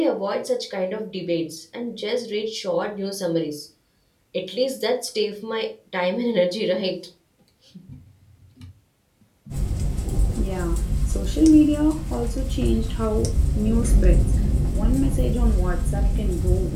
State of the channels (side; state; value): both; identical; correlation 1.00